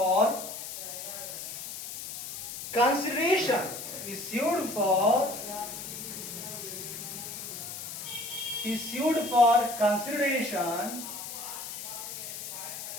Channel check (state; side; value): noise; left; hiss, 8 dB below the sound